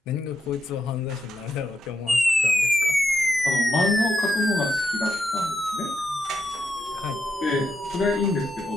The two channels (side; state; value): both; normal; correlation 0.82